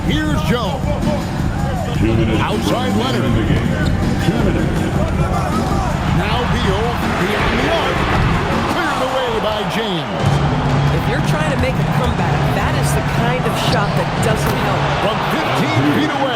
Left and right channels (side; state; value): both; identical; correlation 1.00